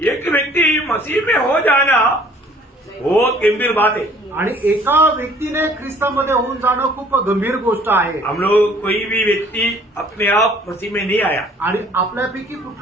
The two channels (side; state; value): both; normal; correlation 0.55